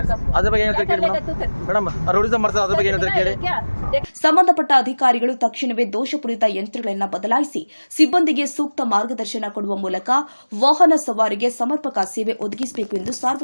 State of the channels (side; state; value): both; inverted; correlation -1.00